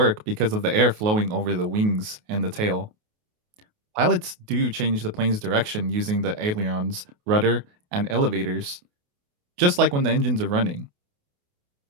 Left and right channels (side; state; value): left; late; 28 ms